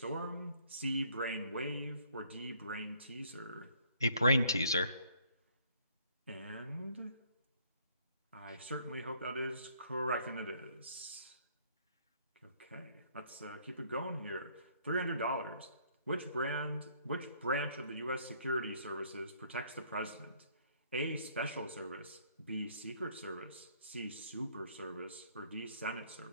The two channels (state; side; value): inverted; both; correlation -0.63